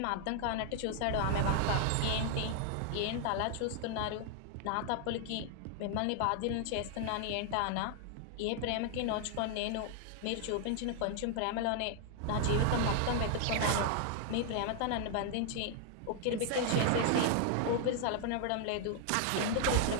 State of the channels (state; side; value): different; both; correlation 0.00